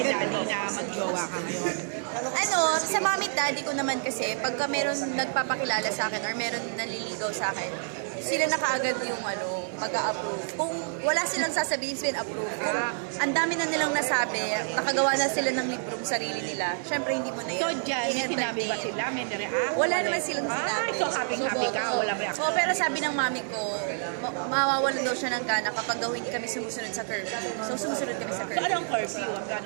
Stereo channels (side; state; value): left; silent; 59 dB below the other